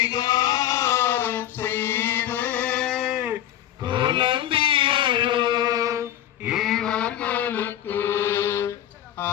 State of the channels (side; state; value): right; quieter; 12.2 dB